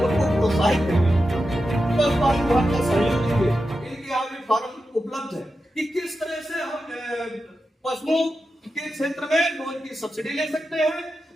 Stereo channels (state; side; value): normal; both; correlation 0.90